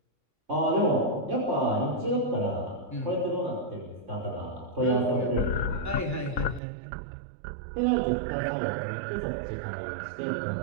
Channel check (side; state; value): left; drops out; at 6.6 s